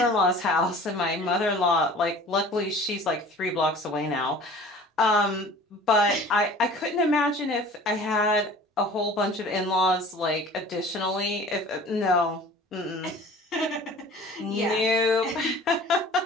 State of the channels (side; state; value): both; normal; correlation 0.45